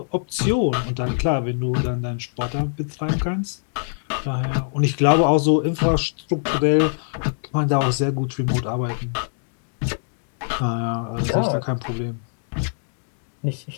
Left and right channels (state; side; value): silent; right; digital silence